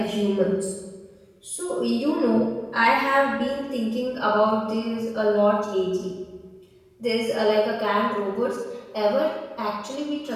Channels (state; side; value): identical; both; correlation 1.00